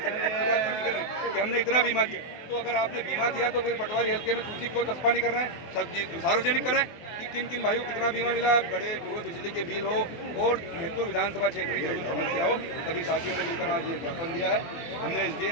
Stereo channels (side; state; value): right; late; 24 ms